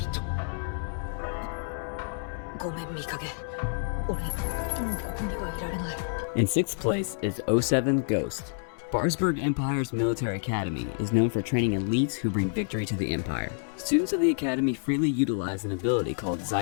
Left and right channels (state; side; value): silent; right; 59 dB below the other